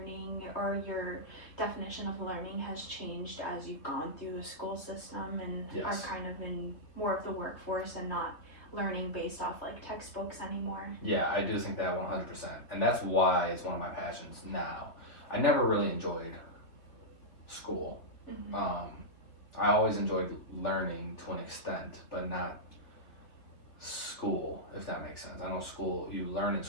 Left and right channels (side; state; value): right; late; 3.2 ms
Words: or your definition of learning has changed as you've gone through the school system and are kind of in more of the workforce and not learning based off like textbooks anymore? Yeah, I do think that 100%. And that's why it's one of my passions now. I never really enjoyed school. I always enjoyed learning to an extent, but not school, if that makes sense. I know school, you learn in